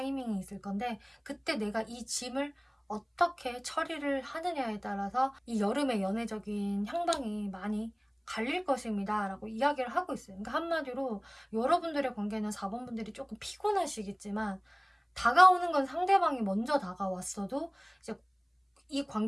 있을 건데, 그때 내가 이 짐을 어떻게 처리를 하느냐에 따라서 이 여름의 연애적인 향방이 많이 갈릴 것입니다 라고 이야기를 하고 있어요. 그러니까 한마디로 여러분들의 관계는 4번 분들이 조금 피곤하시겠지만, 다가오는 건 상대방이 먼저 다가왔어도 이제 이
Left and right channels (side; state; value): both; identical; correlation 1.00